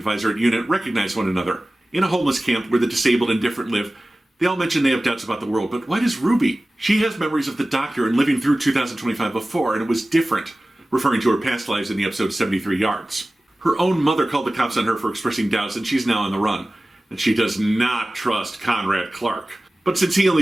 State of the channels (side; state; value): both; normal; correlation 0.97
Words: at UNIT, recognize one another. In a homeless camp where the disabled and different live, they all mention they have doubts about the world, but why does Ruby? She has memories of the doctor and living through 2025 before, and it was different, referring to her past lives in the episode 73 Yards. Her own mother called the cops on her for expressing doubts, and she's now on the run. And she does not trust Conrad Clark. But since he